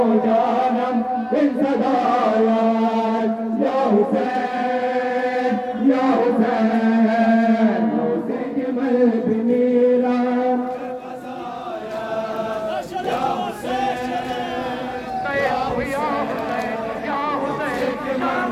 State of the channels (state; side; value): identical; both; correlation 1.00